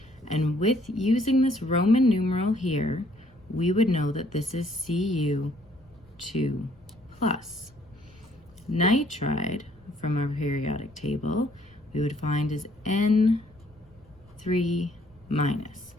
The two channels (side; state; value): left; noise; rumble, 29 dB below the sound